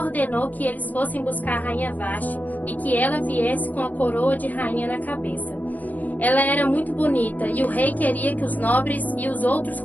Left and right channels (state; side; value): late; right; 0.080 ms